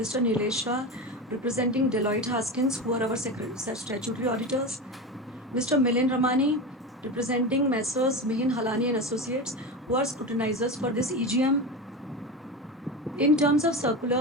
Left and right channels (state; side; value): normal; both; correlation 0.23